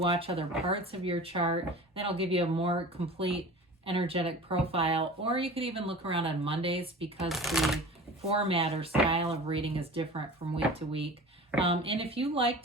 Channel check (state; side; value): normal; both; correlation 0.38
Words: other parts of your chart. That'll give you a more complete energetic profile. Or you could even look around on Mondays because the format or style of reading is different from week to week. And if you like